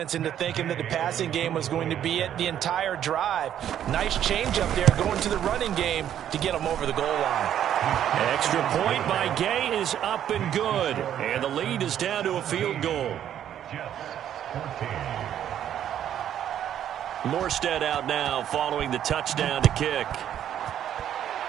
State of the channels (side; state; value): left; quieter; 10.4 dB